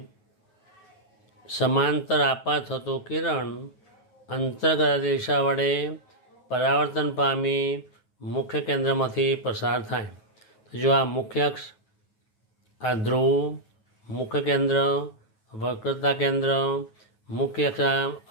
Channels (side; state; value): right; late; 9.4 ms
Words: સમાંતર આપાત થતું કિરણ અંતર્ગોળ અરીસા વડે પરાવર્તન પામી મુખ્ય કેન્દ્રમાંથી પસાર થાય. તો જો આ મુખ્ય અક્ષ, આ ધ્રુવ, મુખ્ય કેન્દ્ર, વક્રતા કેન્દ્ર, મુખ્ય